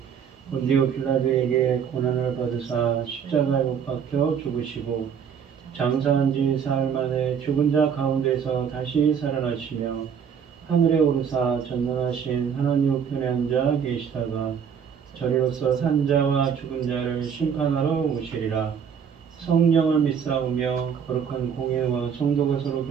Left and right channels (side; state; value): left; quieter; 7.4 dB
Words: 본디오 빌라도에게 고난을 받으사 십자가에 못 박혀 죽으시고 장사한 지 사흘 만에 죽은 자 가운데서 다시 살아나시며 하늘에 오르사 전능하신 하나님 우편에 앉아 계시다가 저리로서 산자와 죽은 자를 심판하러 오시리라. 성령을 믿사오며 거룩한 공예와 성도가 서로